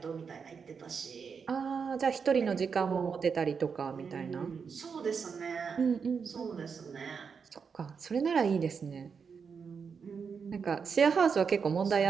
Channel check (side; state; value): left; quieter; 6.0 dB